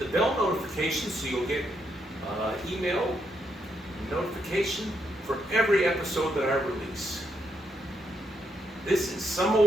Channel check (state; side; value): normal; both; correlation 0.79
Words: bell notification so you'll get email notification for every episode that I release. This is Some